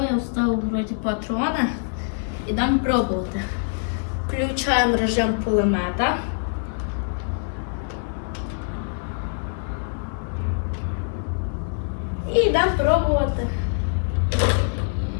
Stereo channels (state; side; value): silent; right; digital silence